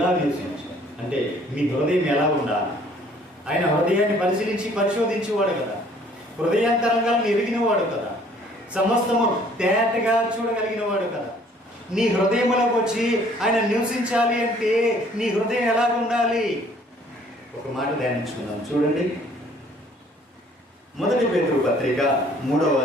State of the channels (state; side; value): normal; both; correlation 0.58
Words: నివసించాలి అంటే మీ హృదయం ఎలా ఉండాలి? ఆయన హృదయాన్ని పరిశోధించేవాడు కదా, హృదయాంతరంగాలను ఎరిగినవాడు కదా, సమస్తము తేటగా చూడగలిగిన వాడు కదా. నీ హృదయంలోకి వచ్చి ఆయన నివసించాలి అంటే నీ హృదయం ఎలా ఉండాలి? ఒక మాట ధ్యానించుకుందాం. చూడండి, 1 పేతురు పత్రిక 3వ